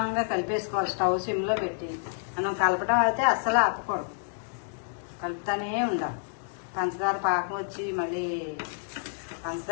కలిపేసుకోవాలి. స్టవ్ సిమ్లో పెట్టి మనం కలపడం అయితే అస్సలు ఆపకూడదు, కలుపుతానే ఉండాలి. పంచదార పాకం వచ్చి మళ్ళీ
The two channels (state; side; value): silent; right; digital silence